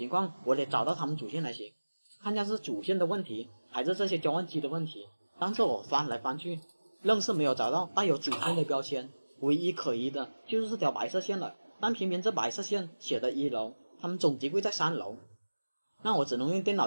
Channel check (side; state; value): both; inverted; correlation -1.00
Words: 况我得找到他们主线才行，看下是主线的问题还是这些交换机的问题。但是我翻来翻去，愣是没有找到带有主线的标签，唯一可疑的就是这条白色线了。但偏偏这白色线写的1楼，他们总机柜在3楼，那我只能用电